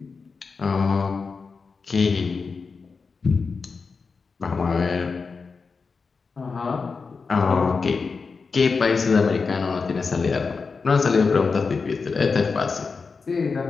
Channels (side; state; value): right; quieter; 4.8 dB